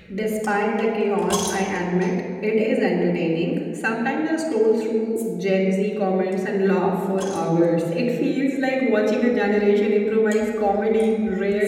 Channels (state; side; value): identical; both; correlation 1.00